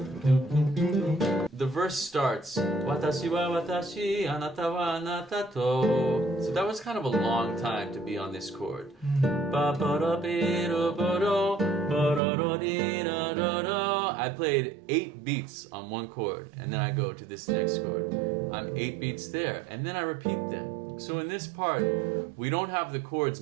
The verse starts, 私は私、あなたはあなたと。So that was kind of a long time to be on this chord. I played 8 beats on one chord, and then I go to this next chord. I'm 8 beats there, and then I repeat them. So in this part, we don't have the chords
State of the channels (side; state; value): left; drops out; at 12.2 s